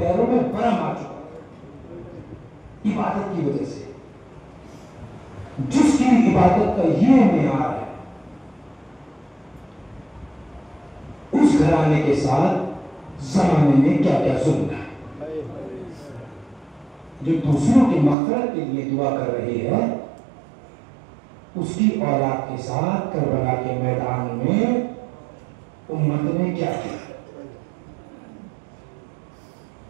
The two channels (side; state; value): left; drops out; at 18.2 s